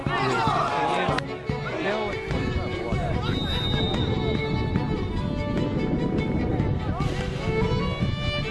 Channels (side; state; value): both; identical; correlation 1.00